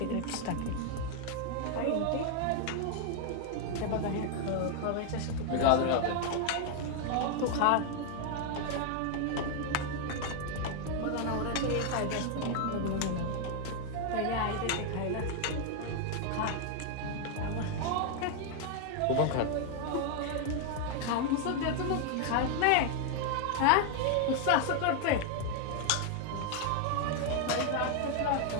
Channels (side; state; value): both; different; correlation 0.00